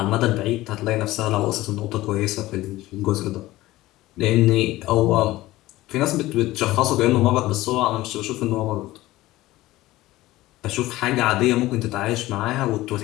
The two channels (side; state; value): right; quieter; 17.3 dB